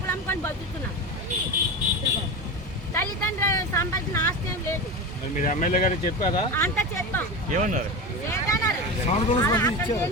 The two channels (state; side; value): normal; both; correlation 0.24